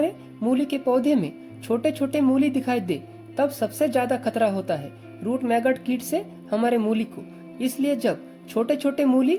मूली के पौधे में छोटे छोटे मूली दिखाई दे, तब सबसे ज्यादा खतरा होता है रूट मैगोट कीट से हमारे मूली को। इसलिए जब छोटे छोटे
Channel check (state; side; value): identical; both; correlation 1.00